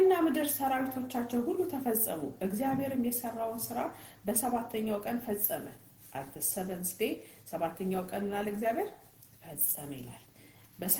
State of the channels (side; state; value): both; identical; correlation 1.00